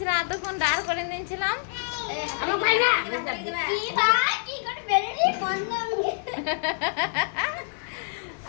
এতক্ষণ দাঁড় করে নিয়েছিলাম।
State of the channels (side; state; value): right; silent; digital silence